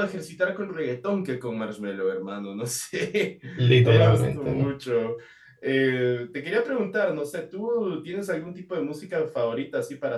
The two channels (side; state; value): both; identical; correlation 1.00